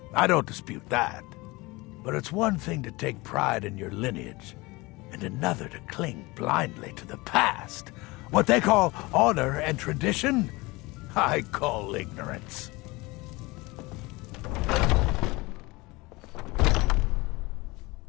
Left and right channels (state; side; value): quieter; right; 23.0 dB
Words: I don't dispute that. But it's one thing to take pride in your lineage, and another to cling blindly to the past. What they call honor and tradition, I call ignorance.